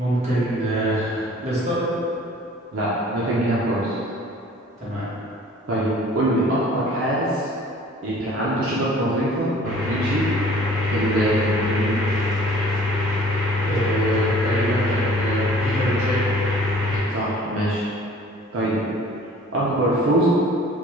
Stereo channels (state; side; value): normal; both; correlation 0.51